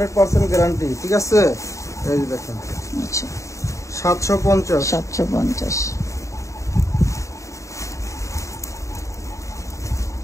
গ্যারান্টি। ঠিক আছে, এই যে দেখেন আচ্ছা 750। 750।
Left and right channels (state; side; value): late; right; 0.15 ms